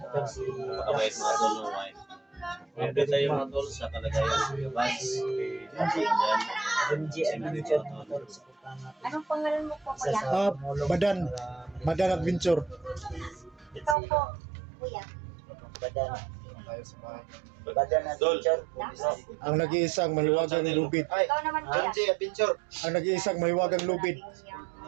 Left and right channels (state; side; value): drops out; left; at 14.0 s